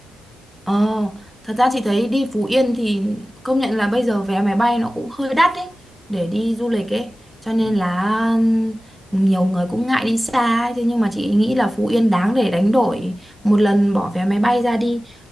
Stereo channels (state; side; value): normal; both; correlation 0.97